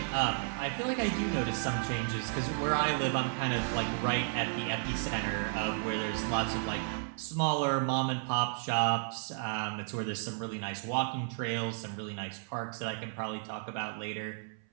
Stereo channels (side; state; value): left; silent; 56 dB below the other